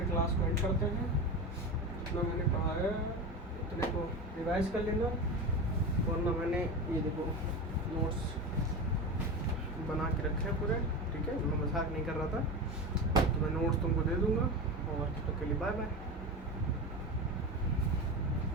क्लास को एंड करते हैं। जितना मैंने पढ़ाया उतने को रिवाइज कर लेना, वरना मैंने ये देखो नोट्स बना के रखे हैं पूरे, ठीक है। मैं मजाक नहीं कर रहा था, तो मैं नोट्स तुमको दे दूंगा। और तब तक के लिए बाय बाय।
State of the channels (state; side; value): normal; both; correlation 0.24